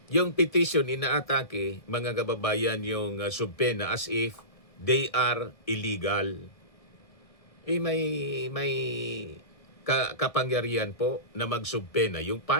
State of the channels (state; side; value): late; right; 1.6 ms